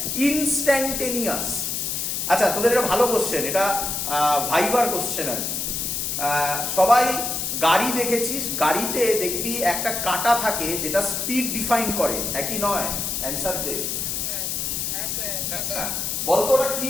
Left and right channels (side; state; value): left; noise; hiss, 2 dB below the sound